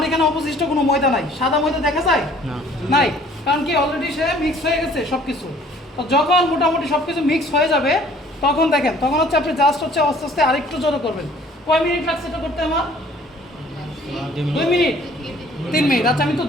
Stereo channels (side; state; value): both; normal; correlation 0.55